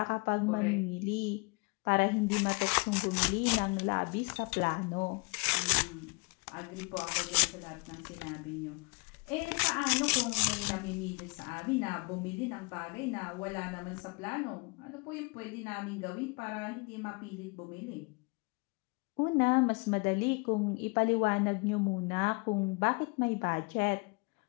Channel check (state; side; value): quieter; right; 30.5 dB